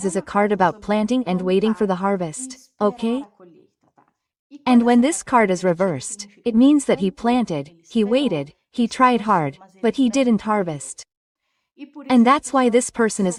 is a card about planting and waiting for the harvest, okay? And when this card is reversed, it means that he planted, he waited, he tried hard, but he didn't harvest. And that's why this person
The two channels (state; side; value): identical; both; correlation 1.00